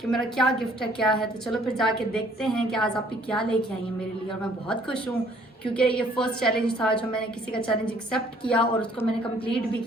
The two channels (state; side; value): normal; both; correlation 0.60